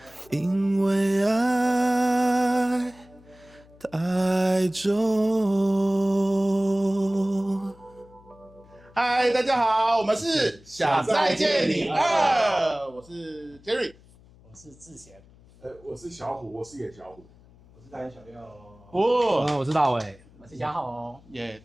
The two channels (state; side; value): noise; left; hum, 26 dB below the sound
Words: 因为爱太重。嗨，大家好，我们是想再见你2，我是 Jerry， 我是志贤，我是小虎，我是野小虎，我是大眼小六。我是大伟，我是嘉豪。耶，